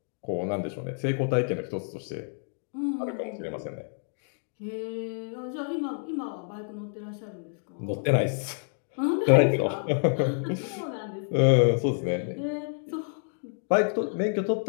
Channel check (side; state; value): right; silent; 59 dB below the other